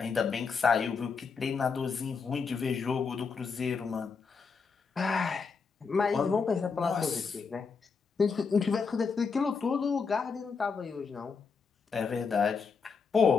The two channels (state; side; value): quieter; right; 5.3 dB